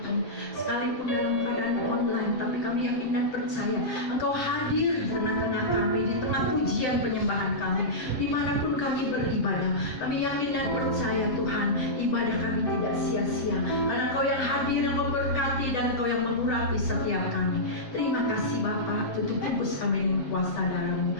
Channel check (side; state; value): right; late; 7.9 ms